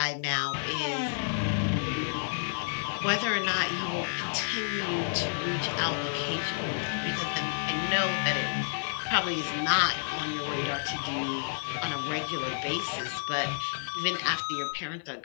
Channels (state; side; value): silent; right; digital silence